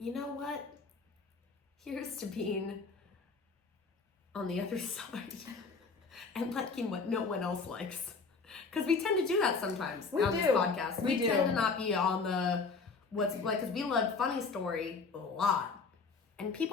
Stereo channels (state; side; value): quieter; right; 4.6 dB